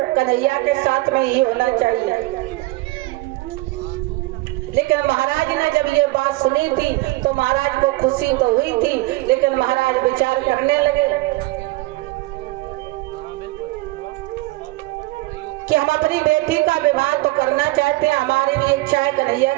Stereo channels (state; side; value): quieter; left; 20.3 dB